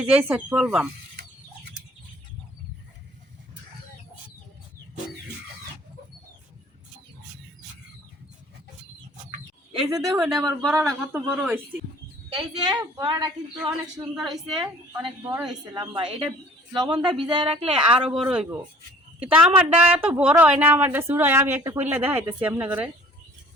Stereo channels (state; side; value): normal; both; correlation 0.51